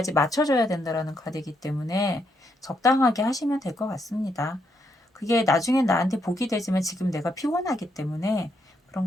맞춰줘야 된다라는 카드이기 때문에 적당하게 하시면 될 것 같습니다. 그게 나중엔 나한테 복이 되지만 지금 내가 피곤하기 때문에 그런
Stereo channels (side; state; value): both; normal; correlation 0.77